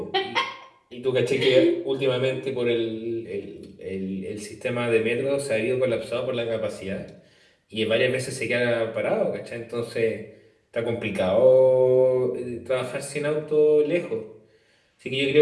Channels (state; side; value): identical; both; correlation 1.00